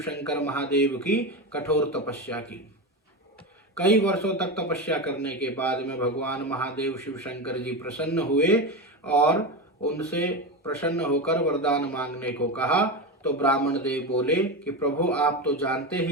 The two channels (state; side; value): normal; both; correlation 0.18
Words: शंकर महादेव की कठोर तपस्या की। कई वर्षों तक तपस्या करने के बाद में भगवान महादेव शिव शंकर जी प्रसन्न हुए और उनसे प्रसन्न होकर वरदान मांगने को कहा। तो ब्राह्मण देव बोले कि प्रभु, आप तो जानते